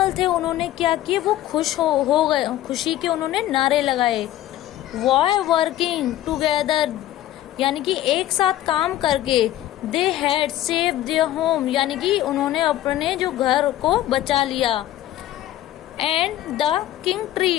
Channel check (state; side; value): quieter; right; 13.7 dB